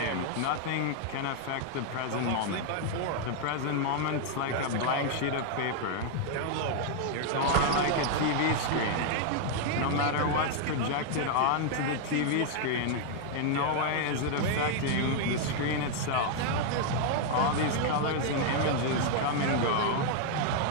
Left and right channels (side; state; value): both; different; correlation 0.00